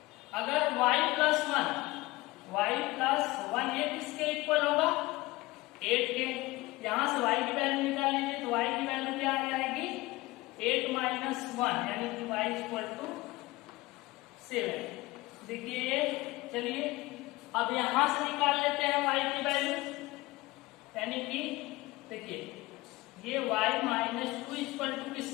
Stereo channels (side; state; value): right; quieter; 20.5 dB